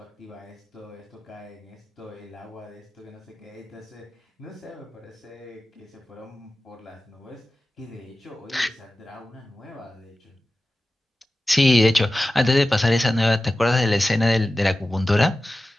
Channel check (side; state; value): both; normal; correlation 0.95